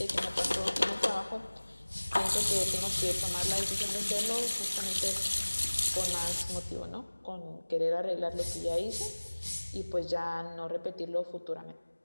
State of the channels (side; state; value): both; inverted; correlation -1.00